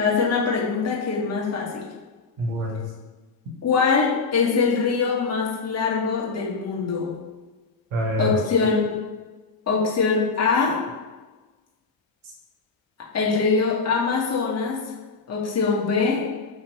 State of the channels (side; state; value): right; quieter; 4.4 dB